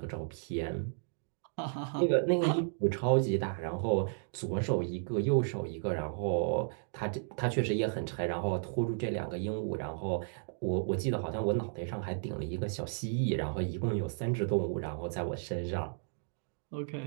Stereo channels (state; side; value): silent; left; digital silence